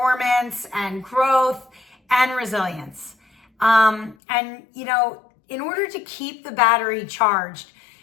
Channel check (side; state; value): right; drops out; at 4.2 s